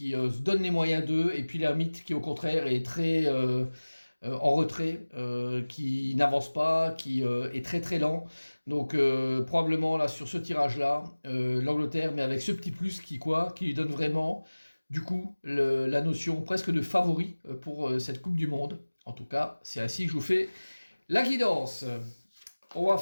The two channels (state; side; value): inverted; both; correlation -1.00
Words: se donne les moyens d'eux, et puis l'ermite qui au contraire est très en retrait, qui n'avance pas, qui est très très lent. Donc probablement là sur ce tirage-là, l'Angleterre, mais avec ce petit plus qui lui donne vraiment du coup la notion presque de favori pour cette Coupe du Monde. En tout cas, c'est ainsi que je vous fais la guidance. On va